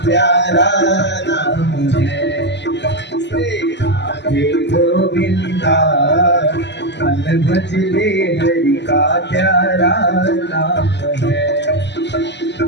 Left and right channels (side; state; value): right; late; 0.51 ms